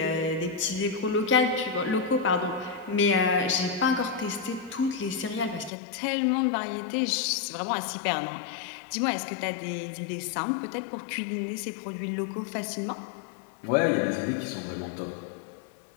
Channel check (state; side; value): drops out; right; at 5.7 s